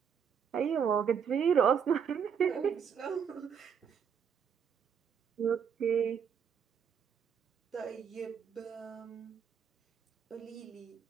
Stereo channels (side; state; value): left; quieter; 7.3 dB